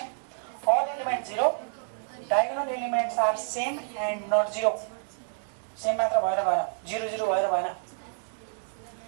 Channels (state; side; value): silent; left; digital silence